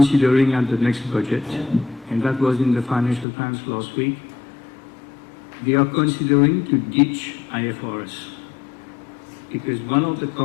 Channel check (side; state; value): right; drops out; at 3.2 s